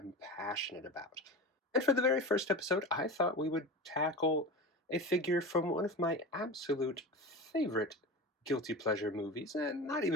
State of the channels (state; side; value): normal; both; correlation 0.29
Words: passionate about. And for the very first episode, I thought we would tackle a figure from one of my absolute favorite guilty pleasure movies, and not